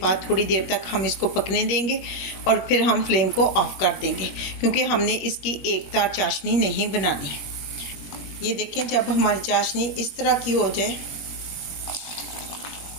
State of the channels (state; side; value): late; right; 21 ms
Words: थोड़ी देर तक हम इसको पकने देंगे और फिर हम फ्लेम को ऑफ कर देंगे, क्योंकि हमने इसकी एक तार चाशनी नहीं बनानी। ये देखें, जब हमारी चाशनी इस तरह की हो जाए